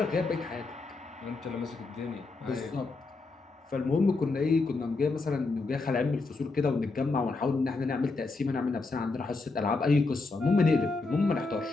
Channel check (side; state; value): right; quieter; 3.7 dB